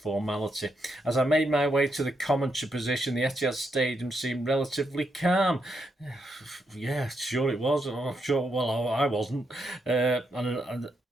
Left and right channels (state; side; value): normal; both; correlation 0.81